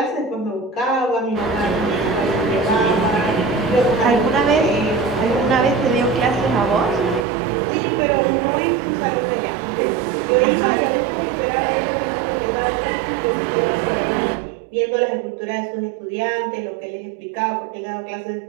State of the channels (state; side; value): drops out; left; at 7.2 s